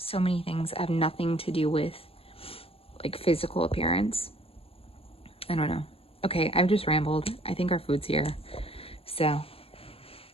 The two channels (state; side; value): late; right; 0.28 ms